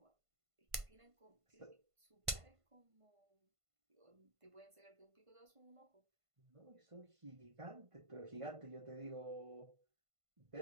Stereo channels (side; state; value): left; late; 1.5 ms